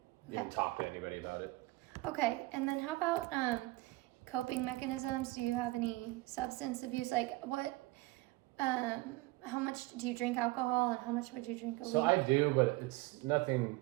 Okay. even talked to anybody about it. Okay, and then how about coping mechanisms? Do you have any substance abuse? Like how much do you drink alcohol and how much would you drink a So week? I do, but it's nothing.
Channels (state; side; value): quieter; left; 20.4 dB